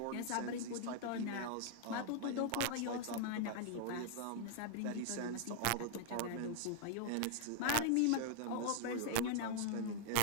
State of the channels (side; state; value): both; different; correlation -0.01